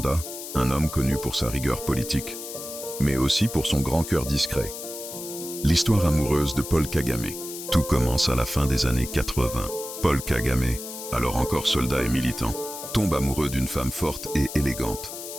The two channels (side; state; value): left; noise; hiss, 10 dB below the sound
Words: un homme connu pour sa rigueur politique, mais aussi pour son grand cœur discret. L'histoire amoureuse de Paul Kagame. Tout commence à la fin des années 80. Paul Kagame, alors encore soldat et militant, tombe amoureux d'une femme forte et élégante,